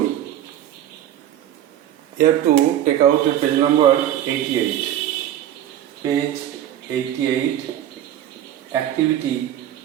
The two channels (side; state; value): left; quieter; 11.6 dB